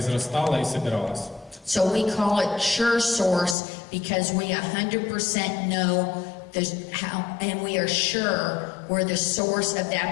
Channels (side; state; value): right; drops out; at 3.6 s